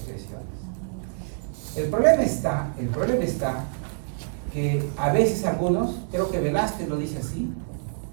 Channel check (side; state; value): left; silent; digital silence